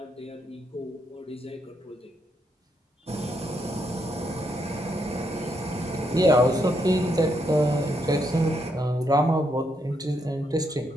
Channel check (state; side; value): normal; both; correlation 0.78